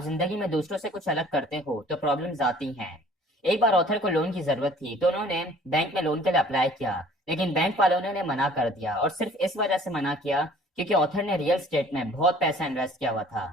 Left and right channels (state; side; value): normal; both; correlation 0.52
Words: जिंदगी में दूसरों से कुछ अलग करते हो तो प्रॉब्लम्स आती हैं। एक बार ऑथर को लोन की जरूरत थी, तो उन्होंने बैंक में लोन के लिए अप्लाई किया, लेकिन बैंक वालों ने उन्हें मना कर दिया, और सिर्फ इस वजह से मना किया क्योंकि ऑथर ने रियल स्टेट में बहुत पैसा इन्वेस्ट किया हुआ था।